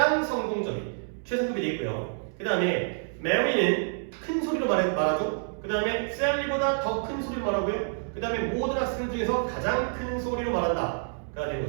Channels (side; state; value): left; silent; 59 dB below the other